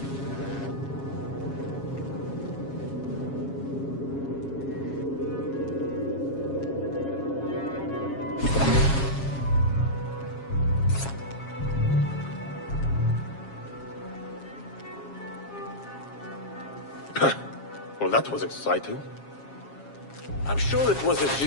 Well, that was exciting. I'm sure it was a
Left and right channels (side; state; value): right; late; 7.3 ms